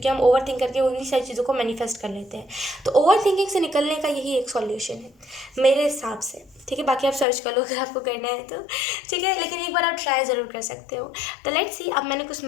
हम ओवर थिंक करके उन्हीं सारी चीज़ों को मैनिफेस्ट कर लेते हैं। तो ओवर थिंकिंग से निकलने का यही एक सॉल्यूशन है मेरे हिसाब से, ठीक है। बाकी आप सर्च कर लो अगर आपको करना है तो, ठीक है। लेकिन एक बार आप ट्राई ज़रूर कर सकते हो। तो लेट्स सी, अब मैंने कुछ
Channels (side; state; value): right; drops out; at 7.2 s